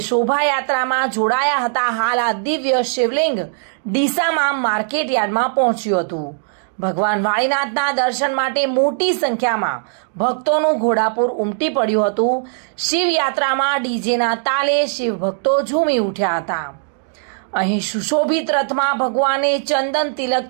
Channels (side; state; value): left; silent; digital silence